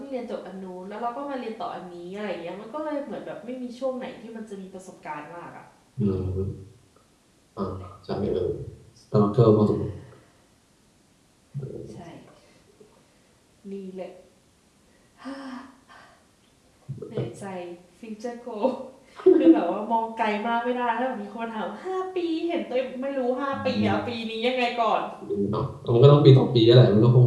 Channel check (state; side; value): identical; both; correlation 1.00